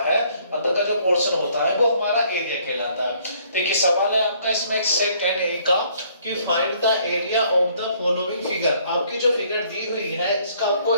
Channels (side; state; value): both; inverted; correlation -0.63